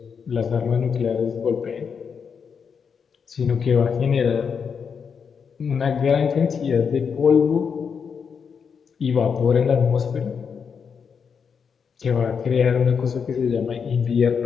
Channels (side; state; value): right; quieter; 6.4 dB